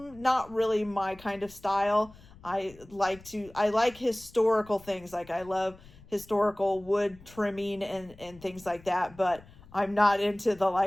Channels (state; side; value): noise; left; rumble, 22 dB below the sound